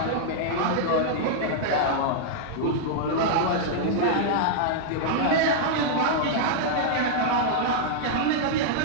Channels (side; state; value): both; different; correlation -0.02